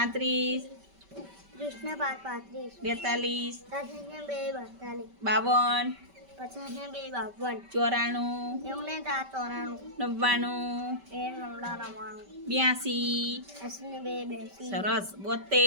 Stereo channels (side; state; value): left; late; 5.2 ms